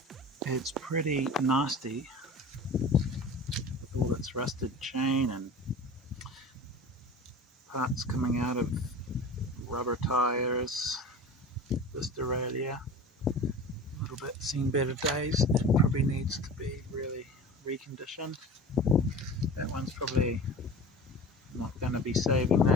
It's pretty nasty with all its rusted chain and parts coming out of rubber tires. This derailleur, a little bit seen better days. It probably needs to be really reconditioned. That one's probably not going to be saving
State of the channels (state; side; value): normal; both; correlation 0.36